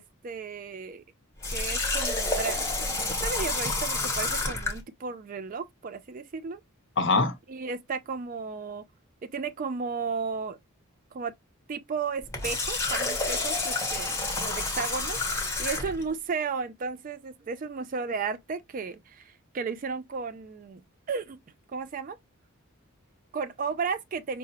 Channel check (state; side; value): normal; both; correlation -0.01